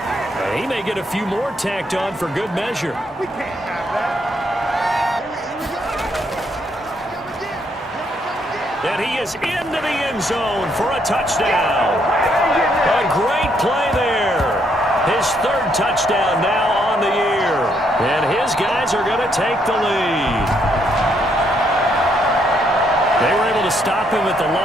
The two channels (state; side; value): normal; both; correlation 0.73